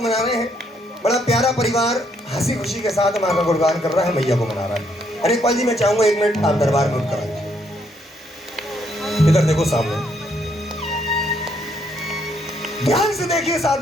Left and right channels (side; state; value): both; normal; correlation 0.72